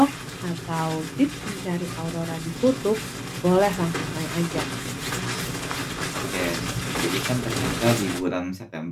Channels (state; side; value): identical; both; correlation 1.00